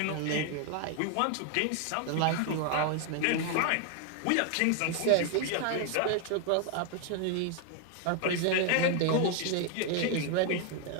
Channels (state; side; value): different; both; correlation 0.00